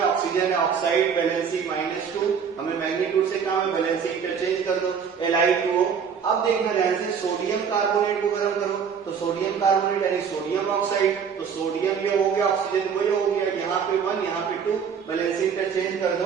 ऑक्सीजन है, ऑक्साइड वैलेंसी -2, हमें मैग्नीट्यूड से काम है, वैलेंसी इंटरचेंज कर दो Li2O। अब देखना ध्यान से सोडियम कार्बोनेट को गर्म करो तो सोडियम कार्बोनेट यानी सोडियम ऑक्साइड, तो सोडियम ये हो गया, ऑक्सीजन वही हो गया, यहाँ पे 1 यहाँ पे 2, वैलेंसी इंटरचेंज कर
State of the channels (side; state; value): left; quieter; 6.8 dB